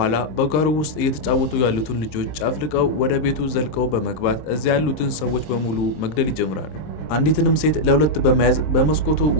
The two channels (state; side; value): late; right; 26 ms